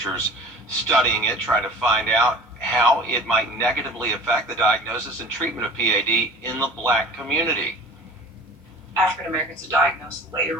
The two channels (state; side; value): normal; both; correlation 0.41